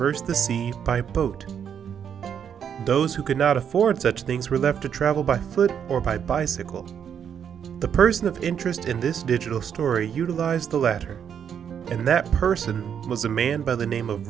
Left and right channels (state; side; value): quieter; left; 8.2 dB